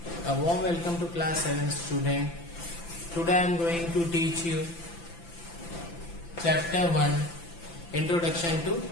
A warm welcome to class 7 student. Today I am going to teach you chapter 1 Introduction to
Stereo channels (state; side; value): late; right; 5.9 ms